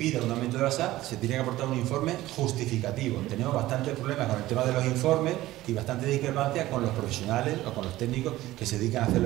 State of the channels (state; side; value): quieter; left; 16.3 dB